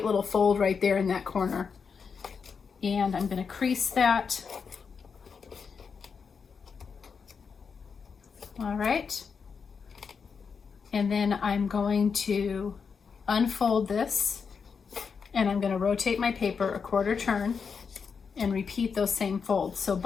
fold right there in that corner. And I'm going to crease that. All right. And then I'm going to unfold this, and I'm going to rotate my paper a quarter turn and repeat those same folds. So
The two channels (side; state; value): right; quieter; 5.8 dB